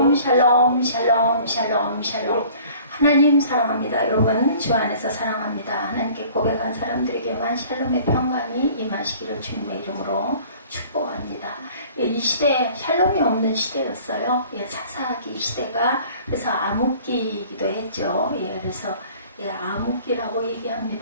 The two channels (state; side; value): inverted; both; correlation -0.50